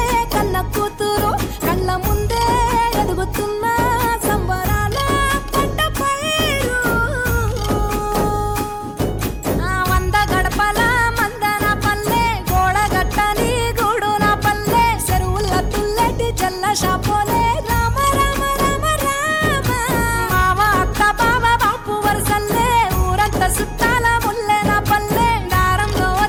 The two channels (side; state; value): both; identical; correlation 1.00